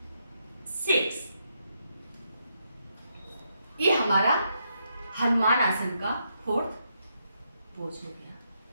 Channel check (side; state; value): both; inverted; correlation -0.79